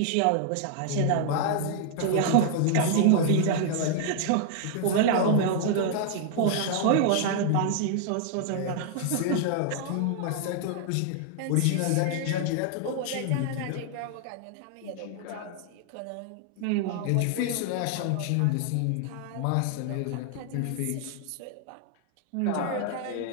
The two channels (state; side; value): different; both; correlation 0.00